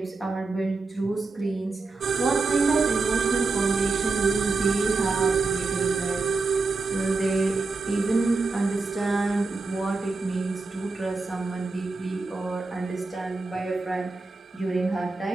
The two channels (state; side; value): quieter; left; 3.8 dB